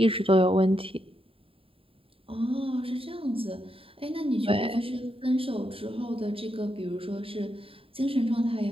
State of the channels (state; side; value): late; left; 0.27 ms